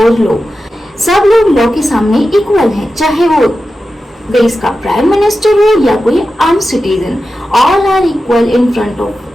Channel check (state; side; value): normal; both; correlation 0.92